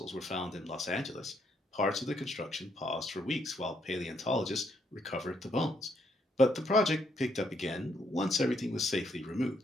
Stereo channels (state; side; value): normal; both; correlation 0.73